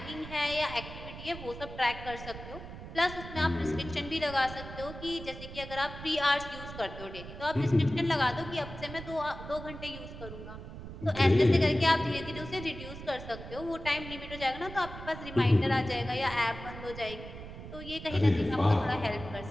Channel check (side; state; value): right; noise; rumble, 12 dB below the sound